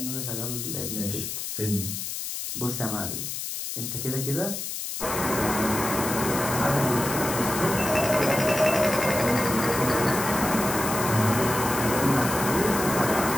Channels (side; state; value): left; noise; hiss, 5 dB below the sound